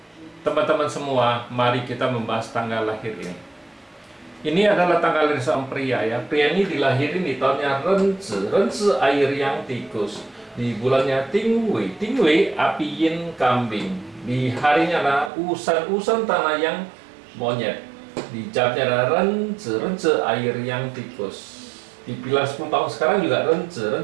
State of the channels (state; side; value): drops out; left; at 15.3 s